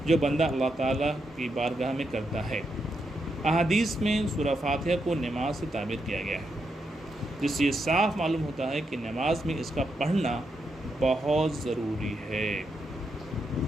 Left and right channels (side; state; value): both; normal; correlation 0.83